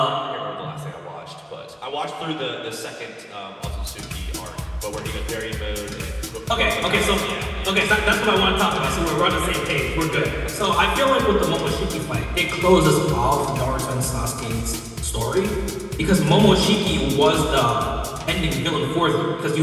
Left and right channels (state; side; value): identical; both; correlation 1.00